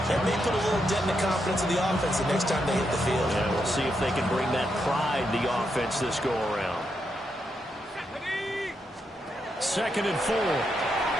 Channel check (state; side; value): normal; both; correlation 0.82